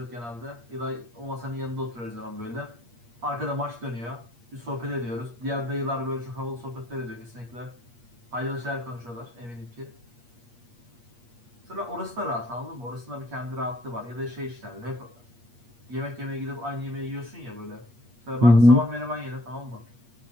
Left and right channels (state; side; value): late; left; 8.5 ms